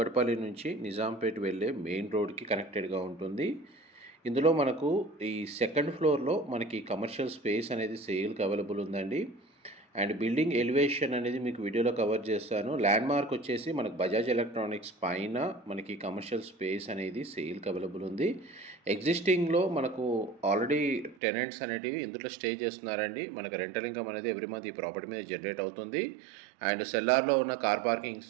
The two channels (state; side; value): drops out; left; at 21.2 s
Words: నుంచి నిజాంపేట్ వెళ్ళే మెయిన్ రోడ్కి కనెక్టెడ్గా ఉంటుంది. ఇందులో మనకు ఈ సెకండ్ ఫ్లోర్లో మనకి కమర్షియల్ స్పేస్ అనేది సేల్కి అవైలబుల్ ఉందండి. అండ్ బిల్డింగ్ ఎలివేషన్ అనేది మీకు వీడియోలో కవర్ చేస్తాను. ల్యాండ్ మార్క్ వచ్చేసి మనకు బజాజ్ ఎలక్ట్రానిక్స్ పైన మనకి కమర్షియల్ స్పేస్ అనేది సేల్కి అవైలబుల్ ఉంది. ఎగ్జిస్టింగ్లో మనకు ఆల్రెడీ టెనెంట్స్ అనేటివి ఇందులో స్టే చేస్తున్నారండి. మనకు రెంటల్ ఇన్కమ్ అనేది ఎవ్రీ మంత్ ఈ ప్రాపర్టీ మీద జనరేట్ అవుతుంది. అండ్ సెల్లార్లో ఉన్న కార్ పార్కింగ్